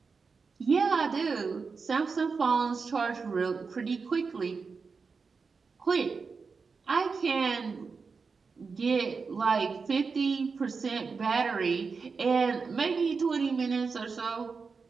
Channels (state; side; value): quieter; left; 4.9 dB